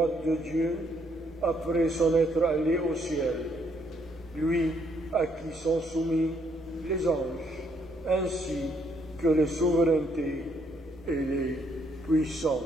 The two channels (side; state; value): both; normal; correlation 0.71